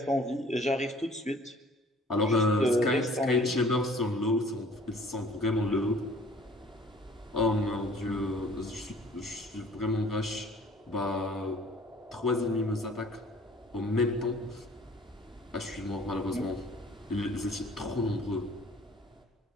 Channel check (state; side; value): normal; both; correlation 0.53